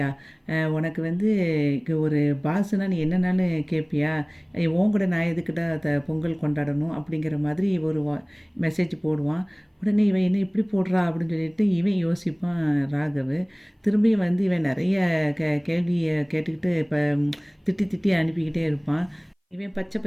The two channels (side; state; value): both; identical; correlation 1.00